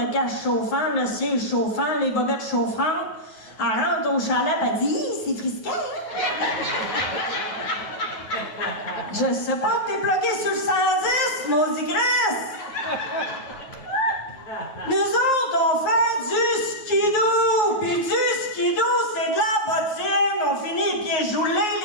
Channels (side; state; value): right; late; 9.5 ms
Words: cache chauffant, le siège chauffant, les bobettes chauffantes. Elle rentre au chalet, elle dit « c'est frisquet! » Je sais pas, t'es bloqué sur le 110, maudit Chris! Nous autres, on fait du skidoo! Puis du skidoo, c'est de la bottine! On finit les pieds joulés,